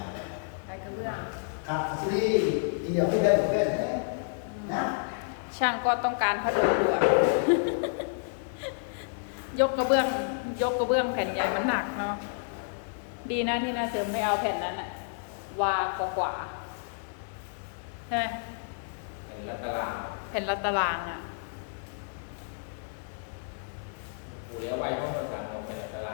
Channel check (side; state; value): right; silent; digital silence